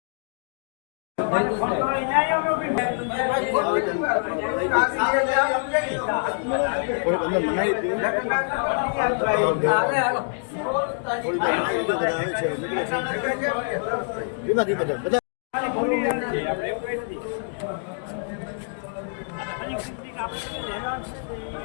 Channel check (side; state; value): right; silent; digital silence